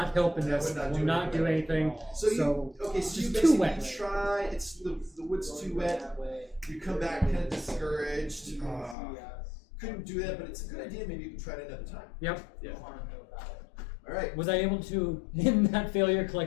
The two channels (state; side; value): drops out; right; at 9.0 s